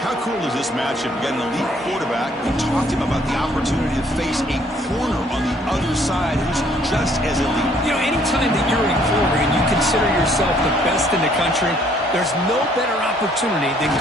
how cool is this matchup? You got an elite quarterback. We talked to him about the opportunity to face a corner on the other side who's just as elite. You know, anytime that you're a corner and you consider yourself the best in the country, there's no better opportunity than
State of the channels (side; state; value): both; normal; correlation 0.63